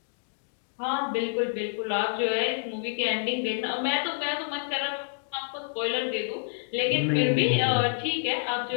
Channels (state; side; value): silent; right; digital silence